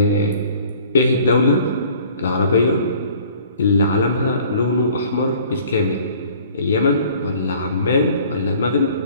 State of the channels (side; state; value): both; inverted; correlation -0.52